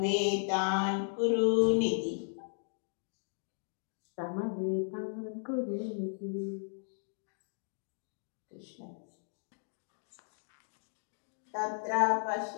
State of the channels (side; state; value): right; silent; digital silence